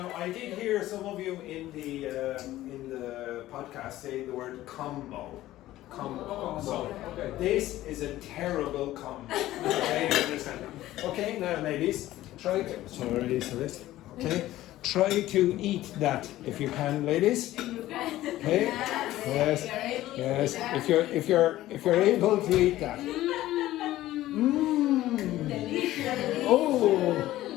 I did hear some of you in the podcast say the word combo. So this is a terrible combo. Okay, understand? Okay, now ladies, try to. Sorry, so this. Okay, try to eat that if you can, ladies. Okay. Yes. Yes. If you're able to eat that. Oh.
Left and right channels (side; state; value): right; quieter; 15.2 dB